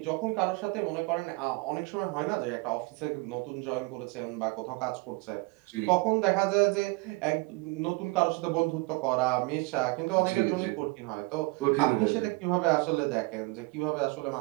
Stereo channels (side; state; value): left; quieter; 25.8 dB